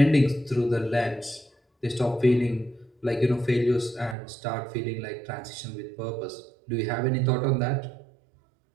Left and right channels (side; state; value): left; drops out; at 4.2 s